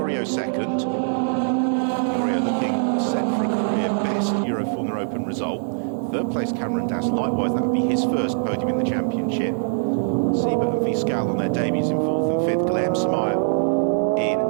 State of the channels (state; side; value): silent; left; digital silence